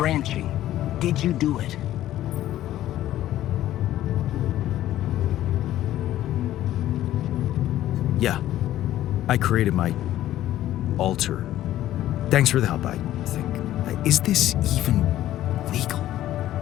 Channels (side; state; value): right; quieter; 13.5 dB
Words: Did you do it? Yeah. I created my alter. Thanks for the help, I think. Is this even legal?